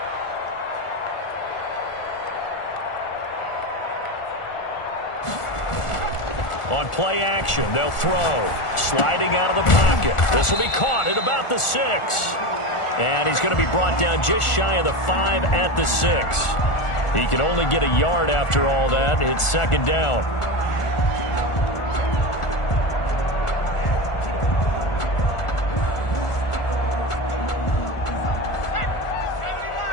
On play action, they'll throw. Sliding out of the pocket. This will be caught at about the 6. And he's going to be brought down just shy of the 5 at the 6. He can only get a yard after all that. It's 2nd down.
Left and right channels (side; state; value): right; late; 1.4 ms